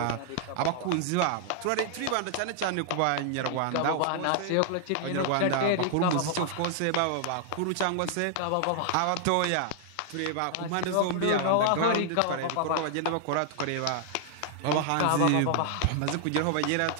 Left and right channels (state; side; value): different; both; correlation 0.00